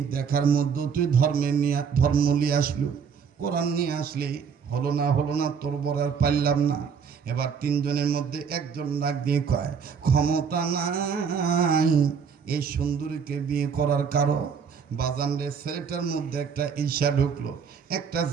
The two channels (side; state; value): left; quieter; 6.5 dB